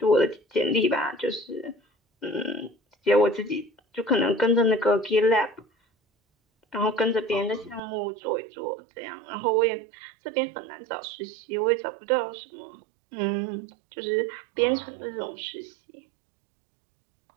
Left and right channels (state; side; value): drops out; left; at 7.8 s